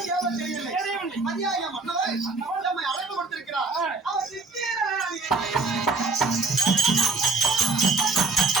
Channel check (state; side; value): quieter; left; 3.8 dB